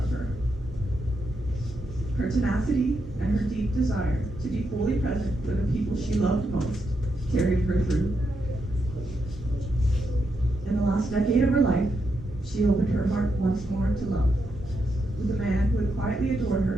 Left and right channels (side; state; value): both; normal; correlation 0.82